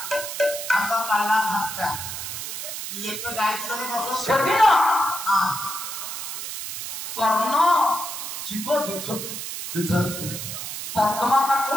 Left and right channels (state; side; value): noise; right; hiss, 6 dB below the sound